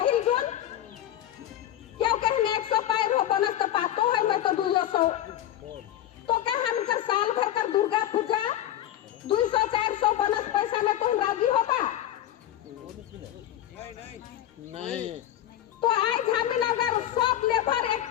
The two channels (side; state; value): right; quieter; 12.1 dB